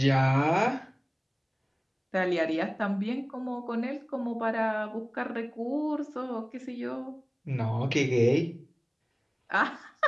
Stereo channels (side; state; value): both; identical; correlation 1.00